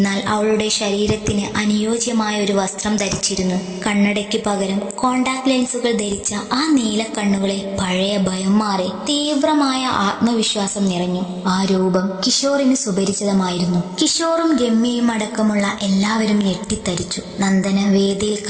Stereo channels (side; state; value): both; identical; correlation 1.00